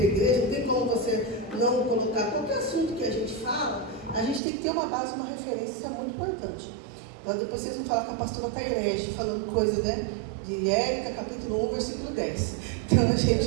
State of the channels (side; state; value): left; drops out; at 4.4 s